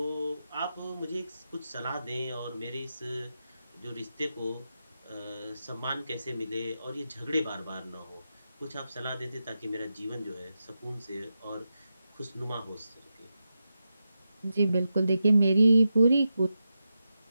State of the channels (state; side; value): inverted; both; correlation -0.89